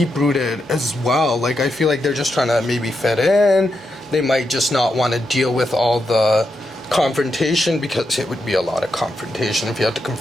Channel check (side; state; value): both; normal; correlation 0.84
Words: as well. Like, I feel like they're just trying to maybe fit in. They might just not want to deal with all the confrontation, because it would be a lot of confrontation if you have to